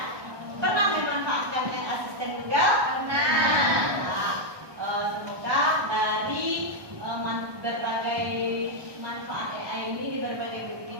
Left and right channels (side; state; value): left; late; 1.2 ms